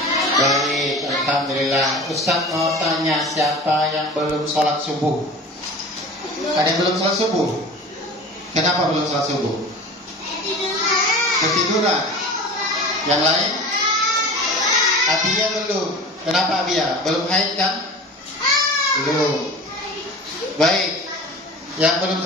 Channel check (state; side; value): normal; both; correlation 0.37